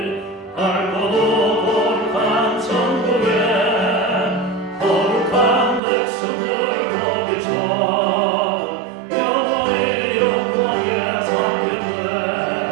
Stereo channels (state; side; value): drops out; left; at 5.8 s